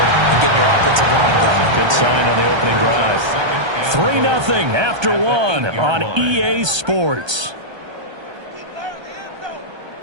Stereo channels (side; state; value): left; late; 1.3 ms